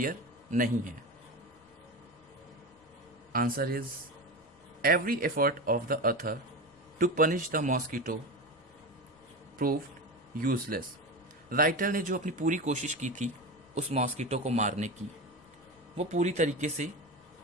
नहीं है? Answer is, every effort of the author to punish the mosquito proved useless. Writer ने जो अपनी पूरी कोशिश की थी उस मॉस्किटो को मारने की, वो पूरी तरीके से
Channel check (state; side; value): noise; left; rumble, 30 dB below the sound